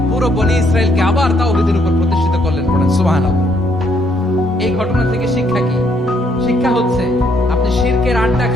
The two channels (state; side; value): normal; both; correlation 0.70